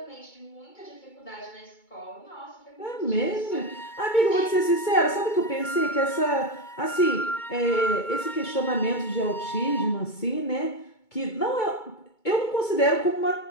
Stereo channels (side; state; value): right; late; 2.2 ms